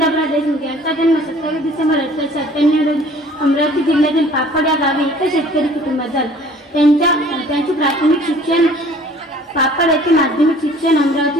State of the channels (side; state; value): both; normal; correlation 0.52